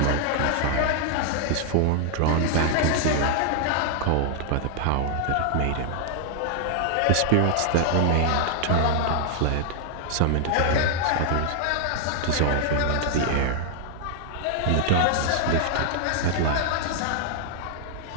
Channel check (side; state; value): both; different; correlation 0.00